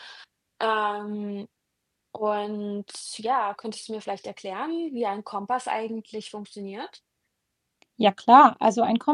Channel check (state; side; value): identical; both; correlation 1.00